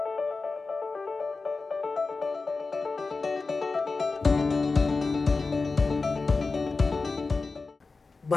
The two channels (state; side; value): quieter; right; 4.0 dB